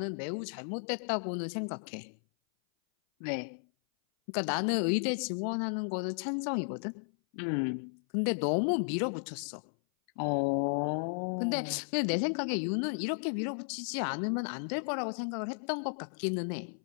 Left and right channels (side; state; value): right; silent; 55 dB below the other